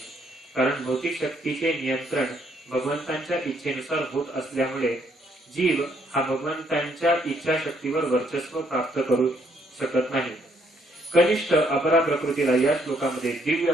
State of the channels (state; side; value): normal; both; correlation 0.70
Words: कारण भौतिक शक्तीचे नियंत्रण भगवंतांच्या इच्छेनुसार होत असल्यामुळे जीव हा भगवंतांच्या इच्छाशक्तीवर वर्चस्व प्राप्त करू शकत नाही. कनिष्ठ अपरा प्रकृतीला या श्लोकामध्ये दिव्य